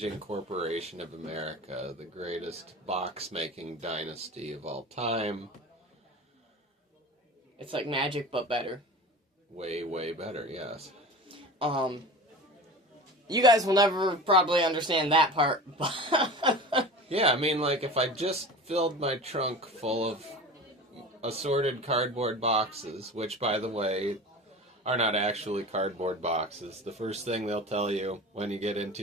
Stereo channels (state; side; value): normal; both; correlation 0.34